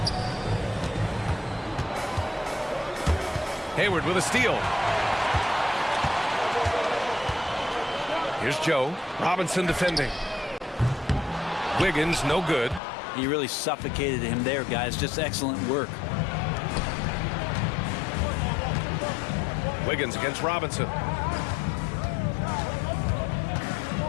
Hayward with a steal. Here's Joe. Robinson defending. Wiggins, no good. He really suffocated him there, guys. Just excellent work. Wiggins against Robinson.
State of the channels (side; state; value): right; drops out; at 12.8 s